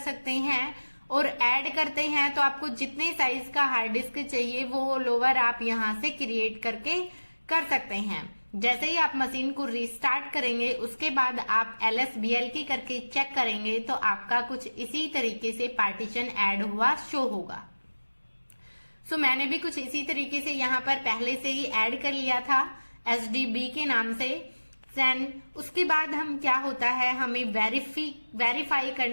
हैं। और ऐड करते हैं तो आपको जितने साइज का हार्ड डिस्क चाहिए वो लोअर आप यहाँ से क्रिएट करके कर सकते हैं। जैसे ही आप मशीन को रीस्टार्ट करेंगे उसके बाद आप LSBL करके चेक करेंगे तो आपका कुछ इसी तरीके से पार्टीशन ऐड हुआ शो होगा। सो मैंने भी कुछ इसी तरीके से यहाँ पर पहले से ही ऐड कर लिया था SDB के नाम से। देन उसके बाद हम क्या होता है, हमें वेरीफाई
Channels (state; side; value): inverted; both; correlation -1.00